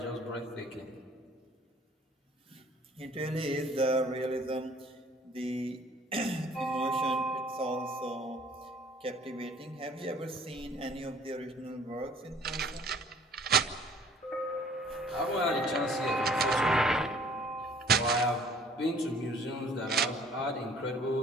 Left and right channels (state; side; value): normal; both; correlation 0.54